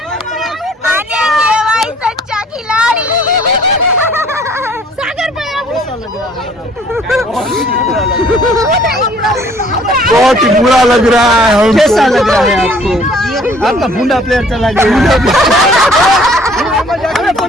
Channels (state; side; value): normal; both; correlation 0.57